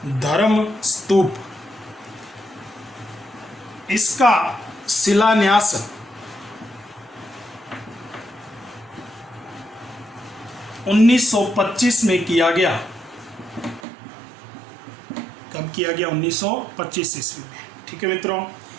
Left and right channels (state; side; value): drops out; left; at 13.8 s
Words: धर्म स्तूप, इसका शिलान्यास 1925 में किया गया। कब किया गया? 1925 ईस्वी में। ठीक है मित्रों,